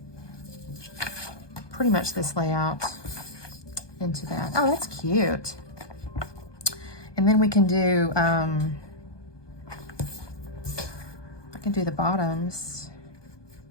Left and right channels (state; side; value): late; right; 1.2 ms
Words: pretty much this layout into that. Oh, that's cute. And then we can do, I can do the bottoms.